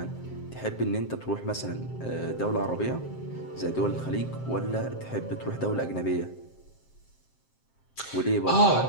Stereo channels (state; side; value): late; right; 7.6 ms